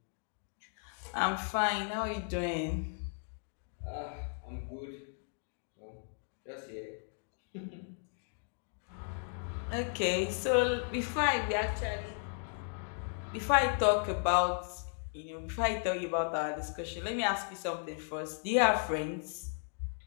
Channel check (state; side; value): silent; right; 54 dB below the other